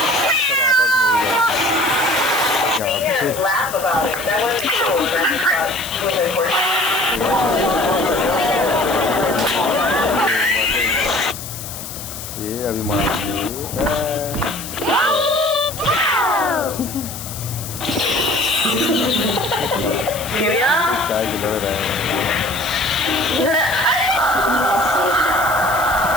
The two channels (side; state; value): left; noise; hiss, 10 dB below the sound